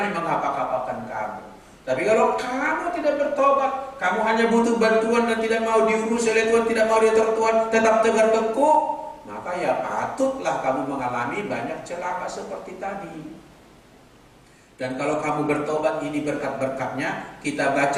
mengapa-apakan kamu. Tapi kalau kamu tidak bertobat, kamu hanya butuh bantuan dan tidak mau diurus oleh Tuhan, tidak mau diatur Tuhan, tetap tegar teguh, maka ya patutlah kamu mengalami banyak celaka seperti tadi. Dan kalau kamu bertobat, ini berkat-berkatnya. Kita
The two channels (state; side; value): identical; both; correlation 1.00